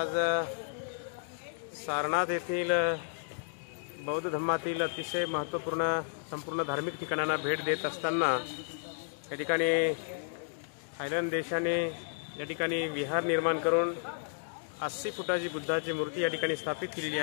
सारनाथ येथील बौद्ध धर्मातील अतिशय महत्त्वपूर्ण संपूर्ण धार्मिक ठिकाणांना भेट देत असताना या ठिकाणी थायलंड देशाने या ठिकाणी विहार निर्माण करून 80 फुटाची बुद्धाची मूर्ती या ठिकाणी स्थापित केलेली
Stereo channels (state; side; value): silent; right; digital silence